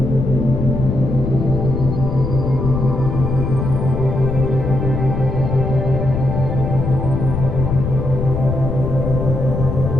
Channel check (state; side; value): noise; left; rumble, 2 dB below the sound